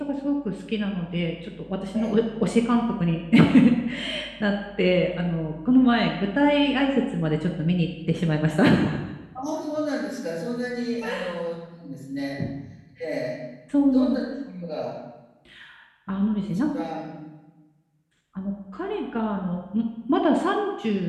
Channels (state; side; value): identical; both; correlation 1.00